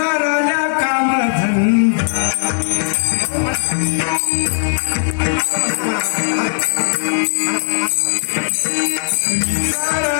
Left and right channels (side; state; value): right; silent; digital silence